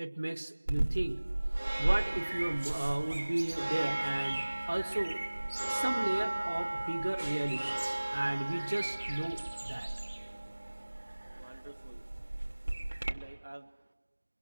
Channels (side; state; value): both; inverted; correlation -1.00